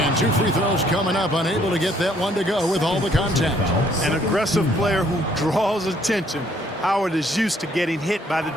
2 free throws coming up. Unable to get that one to go with all the contact. An aggressive player who draws attention. Howard is used to getting hit by the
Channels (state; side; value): normal; both; correlation 0.65